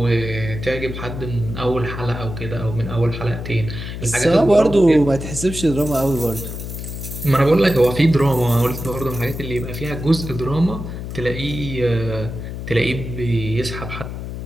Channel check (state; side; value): noise; left; hum, 8 dB below the sound